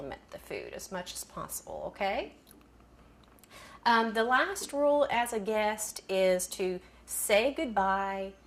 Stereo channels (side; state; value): both; identical; correlation 1.00